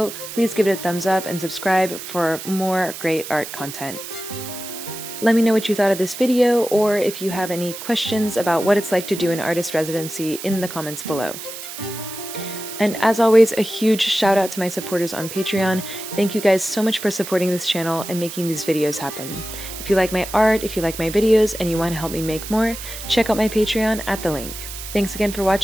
please give it a thumbs up and subscribe for more great art content. Let me know what you thought of this video, or if you have any questions about what it's like to do an artist residency in the comments below. And as always, a huge shout out to my supporters on Patreon. Thank you guys so much for supporting this channel and making these videos happen. If you like my art, if you like my videos, and you want to help me make more, check out my Patreon at the link. Thanks again for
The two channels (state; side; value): noise; right; hiss, 10 dB below the sound